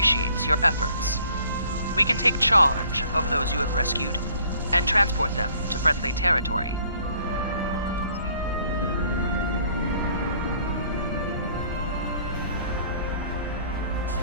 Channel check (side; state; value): both; inverted; correlation -0.59